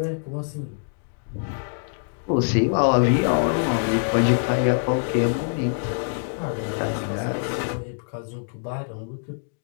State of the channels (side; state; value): right; silent; digital silence